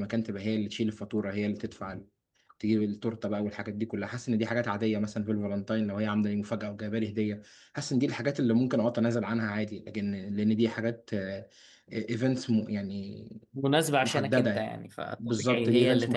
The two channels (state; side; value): identical; both; correlation 1.00